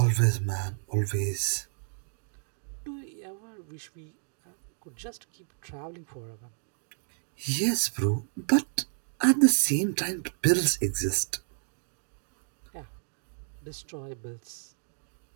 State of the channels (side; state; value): left; silent; digital silence